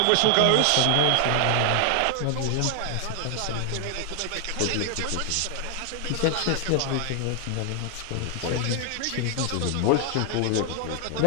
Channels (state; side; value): different; both; correlation 0.00